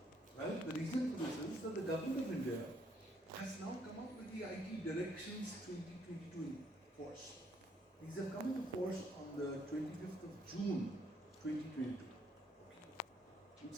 Well, the reason for this is that the government of India has now come up with the IT Directions 2022 in force. These have come into force on the 25th of June 2022. You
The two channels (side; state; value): both; normal; correlation 0.70